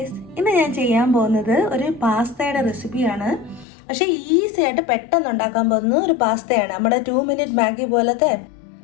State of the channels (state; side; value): drops out; right; at 3.7 s